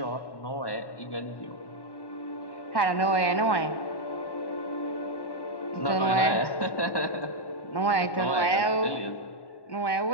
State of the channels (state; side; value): late; right; 1.1 ms